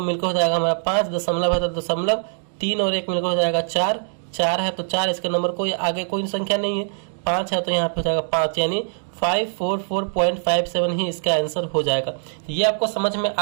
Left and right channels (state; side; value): silent; left; digital silence